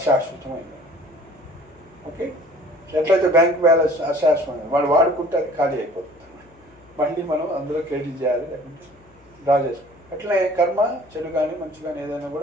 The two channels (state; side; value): noise; left; hum, 29 dB below the sound